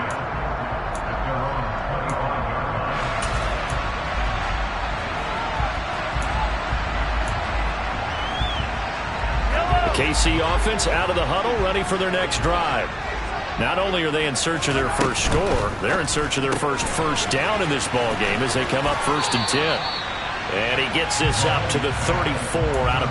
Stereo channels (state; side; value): identical; both; correlation 1.00